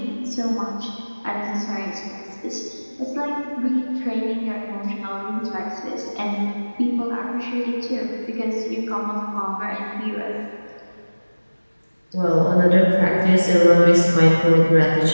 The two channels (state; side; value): inverted; both; correlation -1.00